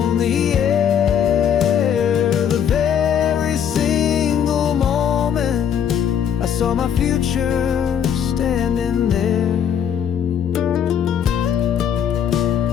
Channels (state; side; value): quieter; right; 8.6 dB